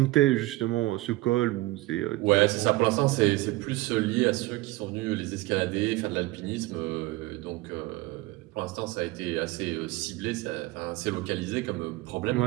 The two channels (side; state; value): left; quieter; 19.6 dB